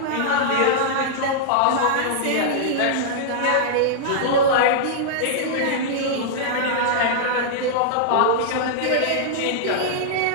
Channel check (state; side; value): different; both; correlation -0.02